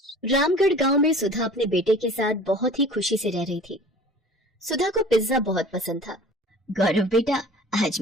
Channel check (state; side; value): normal; both; correlation 0.44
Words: रामगढ़ गांव में सुधा अपने बेटे के साथ बहुत ही खुशी से रह रही थी। सुधा को पिज्जा बहुत पसंद था। गौरव बेटा, आज